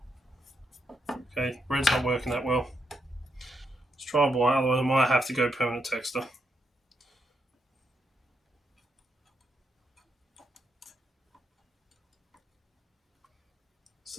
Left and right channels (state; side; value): normal; both; correlation 0.80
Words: Okay, red's not working that well. Let's try white, otherwise I might have to go permanent texture.